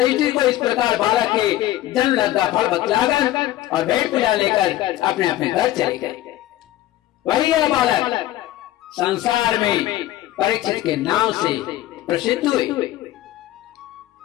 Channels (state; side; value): quieter; right; 14.6 dB